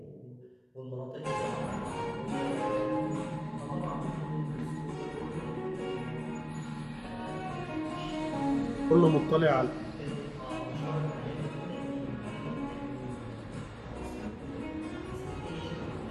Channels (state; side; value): identical; both; correlation 1.00